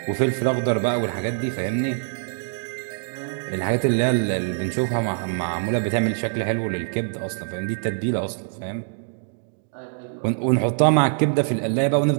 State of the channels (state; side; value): silent; left; digital silence